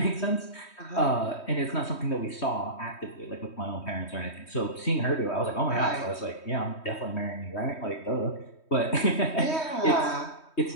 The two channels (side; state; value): right; late; 3.2 ms